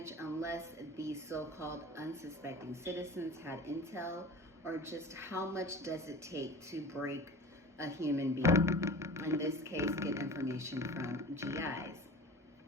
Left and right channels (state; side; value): normal; both; correlation 0.38